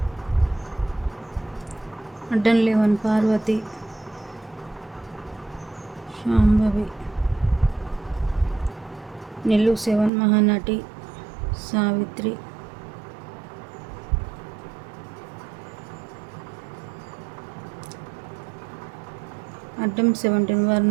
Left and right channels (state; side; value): drops out; left; at 10.1 s